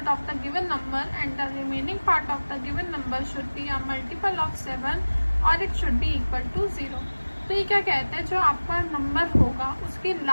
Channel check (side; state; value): both; inverted; correlation -1.00